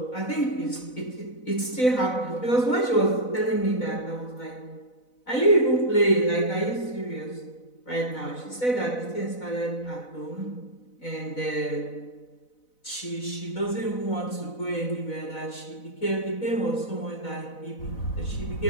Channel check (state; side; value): late; right; 4.0 ms